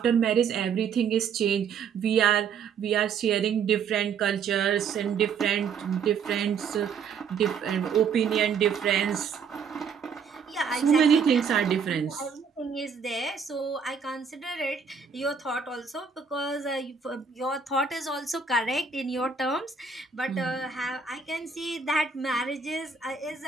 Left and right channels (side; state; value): left; quieter; 6.1 dB